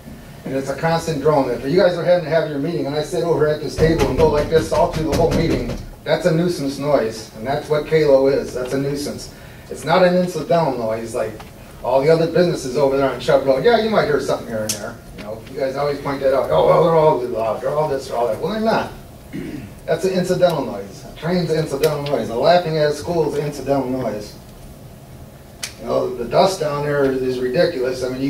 And it's a constant drone. If you guys are having to have your meeting and I sit over at this table and go like this all through the whole meeting, that's a nuisance noise. And that's what Kalo is. That's a nuisance. It's not an incidental noise like all the other businesses over there on Chubb Road. Yeah, you might hear something here and there. You know, you guys always point that out. Oh, well, they're all loud. They're all this, they're all that. Well, they're not. That's an incidental noise. A train's an incidental noise. A laughing at a school is an incidental noise. You know, the dust down there is ridiculous. I mean, you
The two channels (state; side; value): identical; both; correlation 1.00